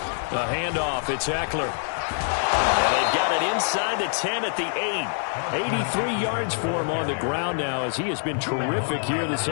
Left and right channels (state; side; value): silent; right; digital silence